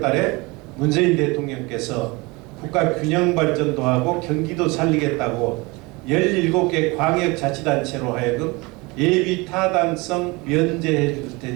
달에 문재인 대통령께서 국가 균형 발전도 하고 경기도 살리겠다고 17개 광역자치단체로 하여금 예비 타당성 면제해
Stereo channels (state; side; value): quieter; left; 25.1 dB